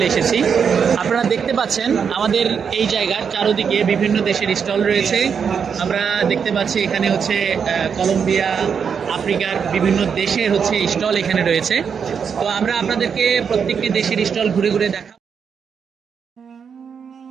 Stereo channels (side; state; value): left; quieter; 6.7 dB